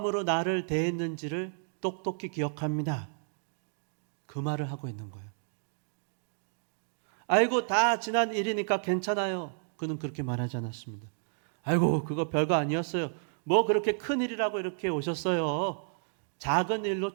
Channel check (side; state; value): left; silent; digital silence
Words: 나를 대했는지를 똑똑히 기억합니다. 그 말을 하고 있는 거예요. 아이고 다 지난 일이니까 괜찮아요. 그는 그렇게 말하지 않았습니다. 아이고 그거 별거 아니었어요. 뭐 그렇게 큰 일이라고 이렇게 오셨어요. 작은 일로